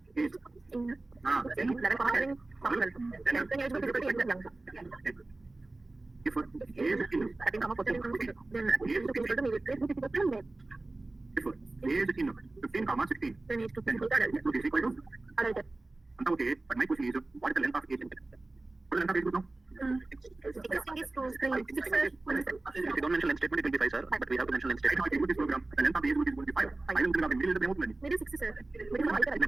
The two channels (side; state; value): left; quieter; 3.0 dB